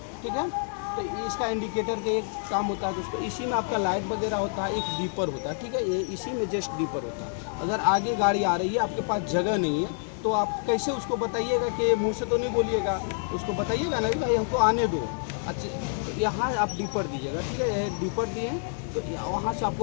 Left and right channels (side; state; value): right; silent; 60 dB below the other